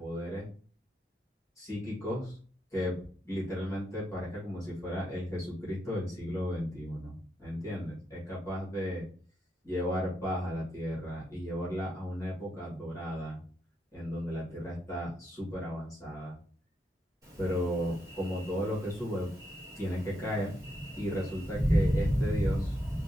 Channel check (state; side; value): normal; both; correlation 0.81